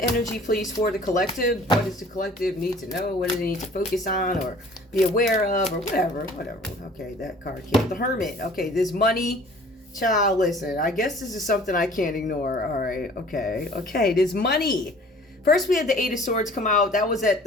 energy, please, for the collective. What does the collective need to know? What do they need to focus on or be aware of or whatever? Okay, that card came. The Hermit. Okay, there's money. Child, listen. I guess this is something I can't ignore. All right. Okay, there's money. First, we had the Eight of Swords come out. That was at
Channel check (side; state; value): both; normal; correlation 0.50